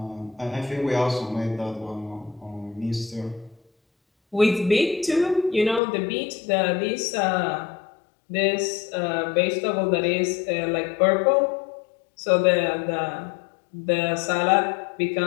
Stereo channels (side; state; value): right; drops out; at 5.8 s